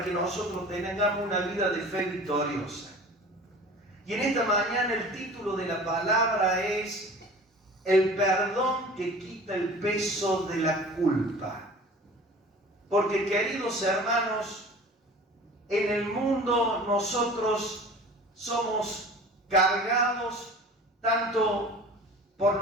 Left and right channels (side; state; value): both; normal; correlation 0.42